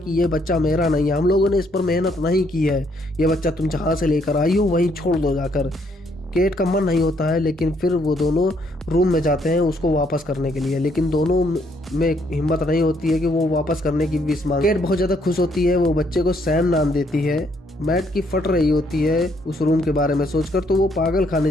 ये बच्चा मेरा नहीं है, हम लोगों ने इस पर मेहनत नहीं की है, ये बच्चा तुम जहाँ से लेकर आई हो वहीं छोड़ दो जाकर। केट का मन नहीं होता है, लेकिन फिर वो दोनों रूम में जाते हैं उसको वापस करने के लिए, लेकिन दोनों में हिम्मत नहीं होती है कि वो वापस करने की विश मांगे। केट बहुत ज़्यादा खुश होती है, वो बच्चे को सैम नाम देती है। मैट की फट रही होती है उस रूम के बारे में सोचकर, तो वो पागल खाने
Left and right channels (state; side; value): normal; both; correlation 0.70